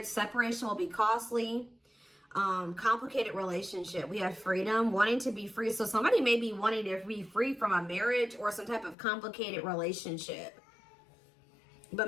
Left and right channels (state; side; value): drops out; right; at 9.0 s